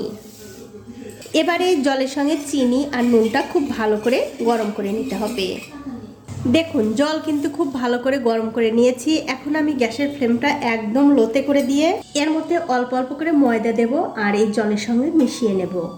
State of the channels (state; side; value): identical; both; correlation 1.00